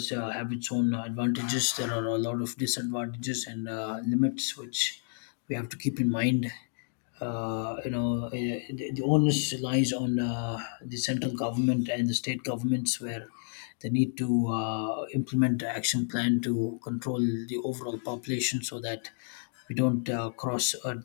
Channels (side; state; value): right; silent; digital silence